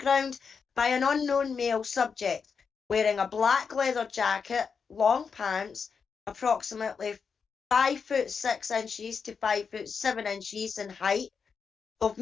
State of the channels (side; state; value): right; quieter; 5.9 dB